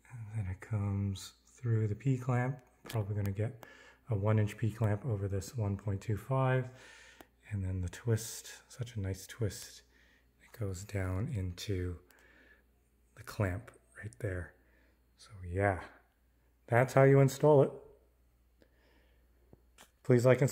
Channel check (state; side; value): identical; both; correlation 1.00